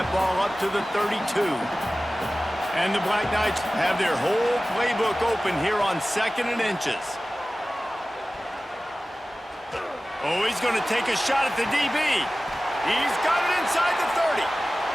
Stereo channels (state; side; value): normal; both; correlation 0.96